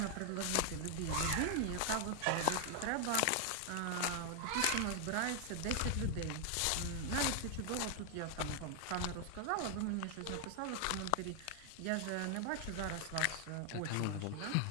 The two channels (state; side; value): different; both; correlation 0.00